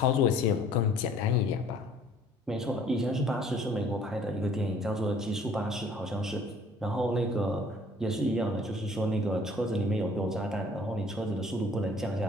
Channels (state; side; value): normal; both; correlation 0.55